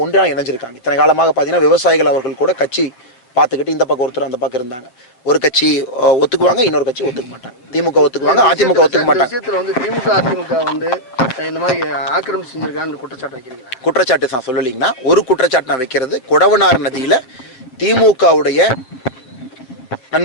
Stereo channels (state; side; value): late; right; 7.9 ms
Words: ஒன்றாக இணைஞ்சிருக்காங்க. இத்தனை காலமாக பார்த்தீங்கன்னா விவசாயிகள் அவர்கள் கூட கட்சி பார்த்துக்கிட்டு இந்த பக்கம் ஒருத்தர் அந்த பக்கம் இருந்தாங்க. ஒரு கட்சி ஒத்துக்குவாங்க, இன்னொரு கட்சி ஒத்துக்க மாட்டாங்க. திமுக ஒத்துக்குவாங்க, அதிமுக ஒத்துக்க மாட்டாங்க. விஷயத்தில் வந்து திமுக அதிமுக வந்து இந்த மாதிரி ஆக்கிரமிப்பு செஞ்சிருக்கான்னு குற்றச்சாட்டு வைக்கிறீங்களா? குற்றச்சாட்டு நான் சொல்லலைங்கன்னா ஒரு குற்றச்சாட்டு நான் வைக்கிறது, கொடவனார் நதியில் திமுகவுடைய